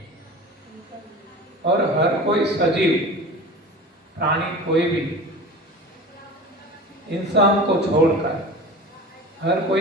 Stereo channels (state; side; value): normal; both; correlation 0.35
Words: और हर कोई सजीव प्राणी, कोई भी इंसान को छोड़कर हर कोई